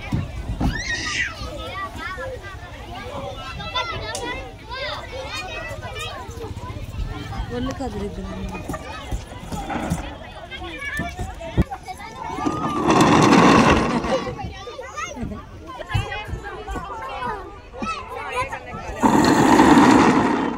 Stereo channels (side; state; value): both; identical; correlation 1.00